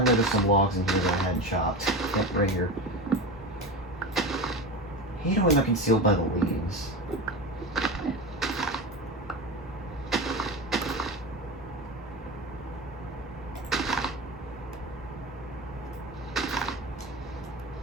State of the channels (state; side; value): normal; both; correlation 0.25